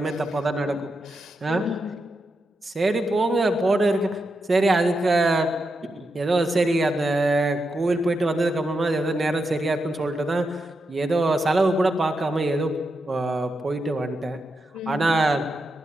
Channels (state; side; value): normal; both; correlation 0.86